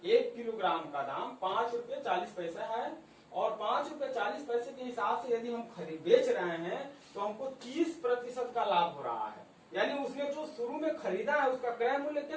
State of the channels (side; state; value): both; identical; correlation 1.00